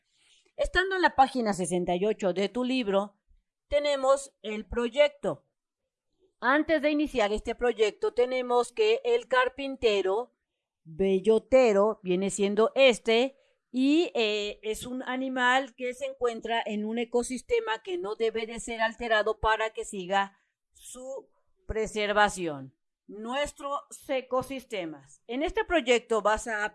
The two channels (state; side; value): identical; both; correlation 1.00